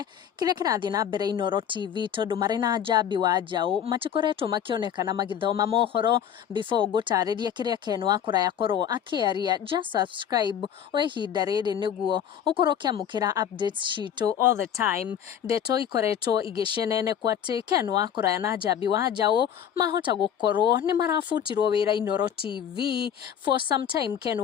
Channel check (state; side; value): quieter; right; 9.1 dB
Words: kiria kirathie na mbere Inooro TV tondu mari na njambi wa njau matikoretwo makionekana magithoma mohoro. Before ngutariria kiria Ken Wakuraya korwo akiaria, just subscribe o ihinda riri niguo ukorwo kiamukira updates citu all the time. Ndeto ikoretwo igicenenekwo ati Ken Wakuraya na njambi wa njau mahota gukorwo ni marafutirwo wira Inooro TV for some time. Ken